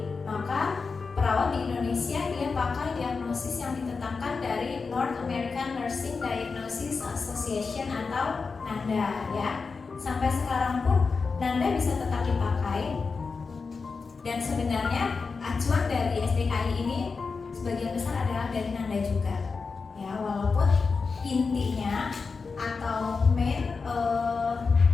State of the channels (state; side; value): quieter; right; 4.7 dB